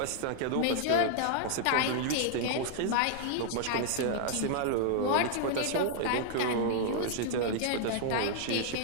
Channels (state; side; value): different; both; correlation 0.00